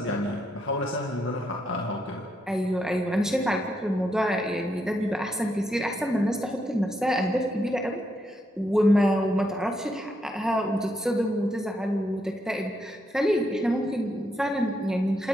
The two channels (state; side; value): normal; both; correlation 0.79